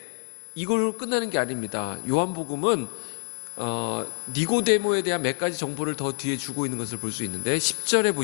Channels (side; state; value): right; silent; digital silence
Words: 이걸로 끝나는 게 아닙니다. 요한복음은 니고데모에 대한 몇 가지 정보를 더 뒤에 주고 있는 것을 볼 수 있는데 10절에